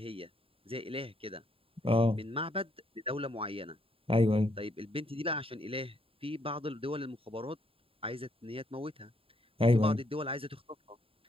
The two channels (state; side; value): late; left; 0.27 ms